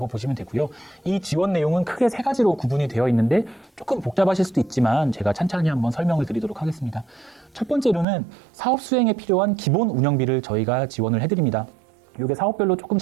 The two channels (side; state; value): left; drops out; at 8.1 s